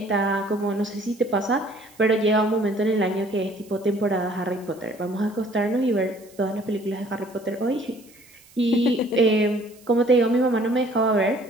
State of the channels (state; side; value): noise; right; hiss, 26 dB below the sound